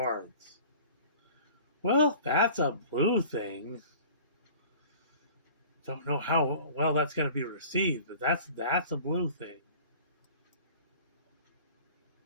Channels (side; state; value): both; inverted; correlation -0.45